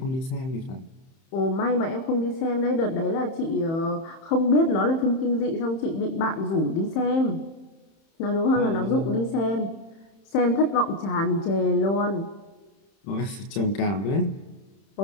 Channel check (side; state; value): right; late; 31 ms